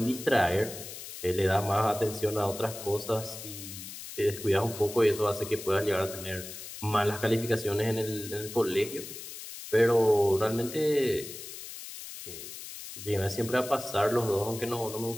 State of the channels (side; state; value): left; noise; hiss, 11 dB below the sound